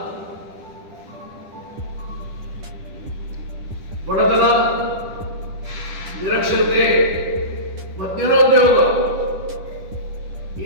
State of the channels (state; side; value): late; left; 10 ms